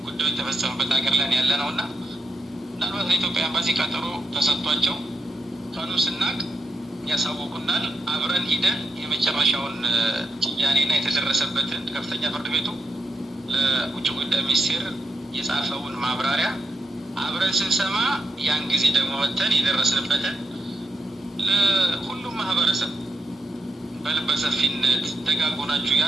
ጉዳዩ የተፈጸመበት ሀገር ላይ ያለ ነው እና ምናልባት ለኢትዮጵያ ኤምባሲ ቀጠሮ ተሰጥቷቸው ቀኑ ስናቅ ያሳውቁናል። አብረን ሂደን የመጨረሻውን ጭያኔና የተደረሰበትን ከፍተኛ ፍርድ ቤቱ ለውጭ ጉዳይ ሚኒስቴር የጻፈውን ማብራሪያ አብረን ስንሰማ ያን ጊዜ ደግሞ ወጥተን የደረስንበትን ለሁሉም ማህበረሰብ በልበ ሰፊነት ደጋጎናችሁ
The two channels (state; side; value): normal; both; correlation 0.83